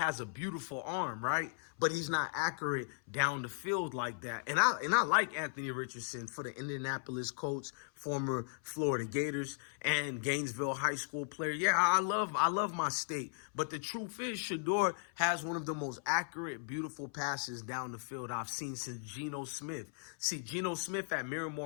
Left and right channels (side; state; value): right; silent; 53 dB below the other